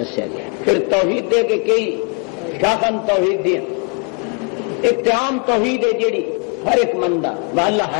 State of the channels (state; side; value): quieter; right; 36.4 dB